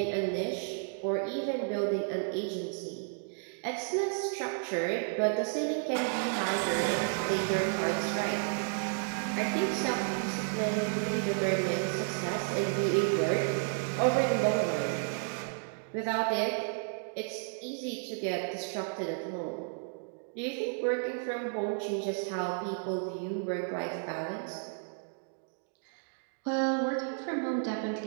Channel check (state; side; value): silent; left; 56 dB below the other